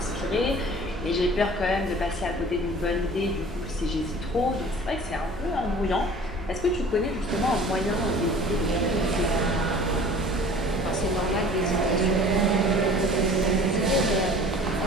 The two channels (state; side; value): normal; both; correlation 0.46